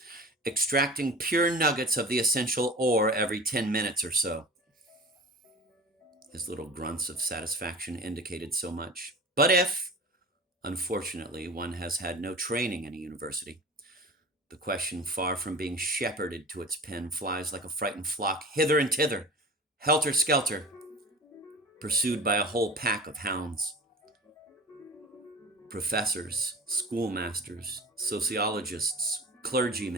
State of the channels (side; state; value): both; normal; correlation 0.37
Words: extracting pure nuggets of the essential ore every 10 minutes or so. His little grunts of satisfaction indicated so much. But if, unfortunately, one has had no training in a university, the question, far from being shepherded to its pen, flies like a frightened flock hither and thither, helter-skelter, pursued by a whole pack of hounds. Professors, schoolmasters, sociologists,